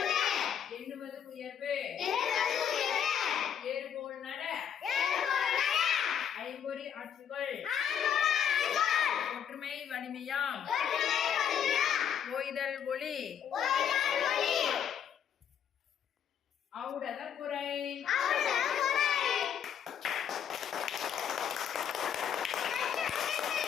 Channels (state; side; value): quieter; right; 8.5 dB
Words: எண்ணுவது உயர்வு, ஏறுபோல் நட, ஐம்பொறி ஆட்சிகள், ஒற்றுமை வலிமையாம், ஓய்தல் ஒளி, ஔடத குறை.